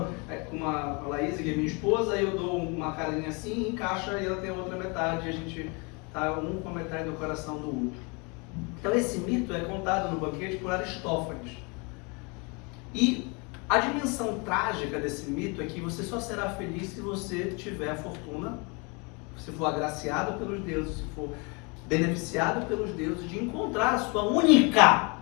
com a Laís, que é minha esposa, e eu dou uma carinha assim, encaixa e ela tem a outra metade, e a gente está um com a metade do coração do outro. Então esse mito é contado no banquete por Aristófanes. E a dimensão trágica desse mito é que você só será feliz se você tiver a fortuna, se for agraciado pelos deuses, se for beneficiado pelos deuses, de encontrar a sua única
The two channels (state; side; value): quieter; right; 30.8 dB